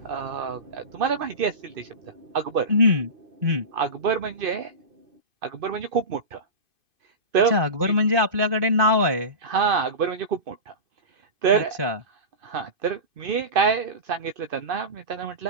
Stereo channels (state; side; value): late; left; 2.5 ms